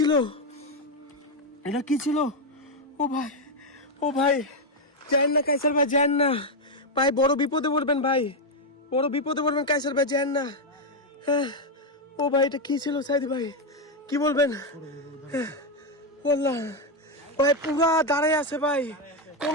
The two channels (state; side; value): normal; both; correlation 0.04